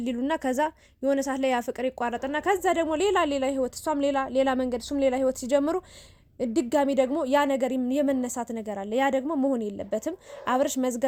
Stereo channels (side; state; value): both; identical; correlation 1.00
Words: ይሉና ከዛ የሆነ ሰዓት ላይ ያ ፍቅር ይቋረጥና ከዛ ደግሞ ሌላ ህይወት እሷም ሌላ መንገድ እሱም ሌላ ህይወት ሲጀምሩ ድጋሚ ደግሞ ያ ነገር የመነሳት ነገር አለ። ያ ደግሞ መሆን የለበትም። አብርሽ